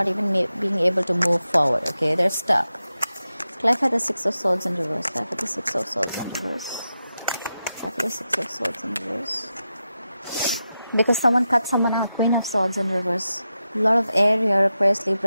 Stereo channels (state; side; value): inverted; both; correlation -0.90